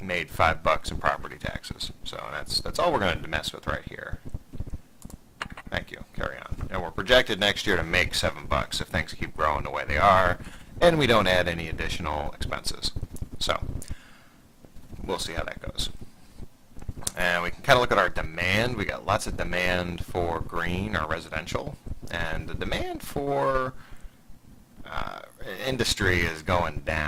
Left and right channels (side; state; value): both; identical; correlation 1.00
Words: $5 in property taxes. So that's all we're going to mess with right here. Thank you. Carry on. And we're projected next year to make $7 if things keep growing the way they are, and we don't add any additional expenses. So we'll see how that goes. And we can kind of look at our demand. We got lots of demand for green or residential, and the demand for industry is going